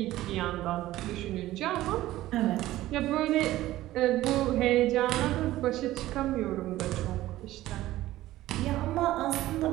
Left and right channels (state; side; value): quieter; left; 15.6 dB